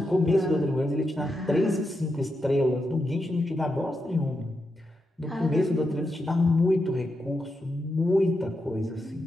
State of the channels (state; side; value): normal; both; correlation 0.86